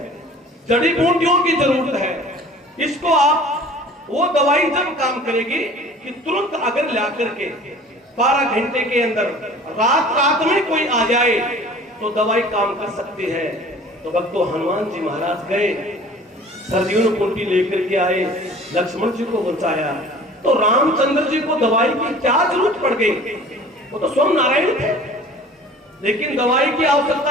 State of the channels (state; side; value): normal; both; correlation 0.46